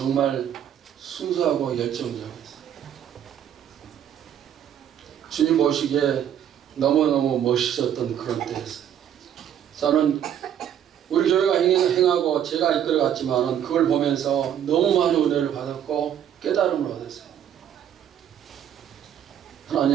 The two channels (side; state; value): left; quieter; 9.8 dB